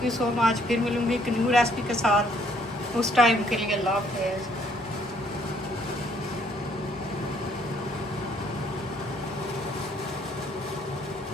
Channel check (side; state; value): both; normal; correlation 0.65